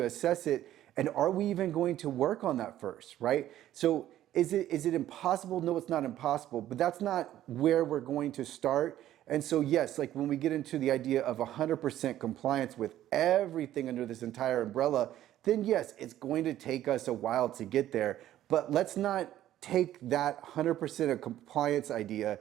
assess it. And are we even going to work on that first, right? So is it impossible? No, it's not impossible, but that's not where we're going to start. And so yes, like when we get into the idea of 100% compliance with everything under this entire umbrella, then yes, it's going to take us a while to get there. But let's not take that 100% of compliance idea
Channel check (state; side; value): quieter; left; 12.8 dB